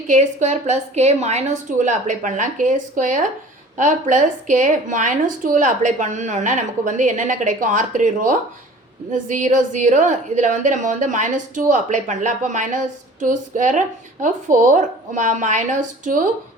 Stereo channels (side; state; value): both; normal; correlation 0.45